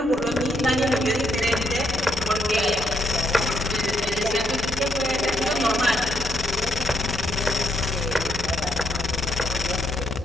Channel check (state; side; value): normal; both; correlation 0.77